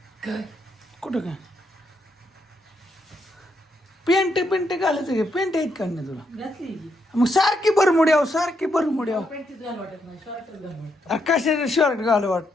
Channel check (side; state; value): both; normal; correlation 0.78